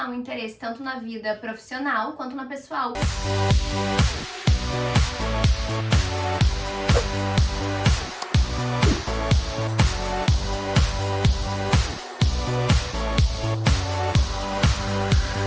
um interesse tanto na vida profissional quanto na pessoal.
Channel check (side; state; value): both; identical; correlation 1.00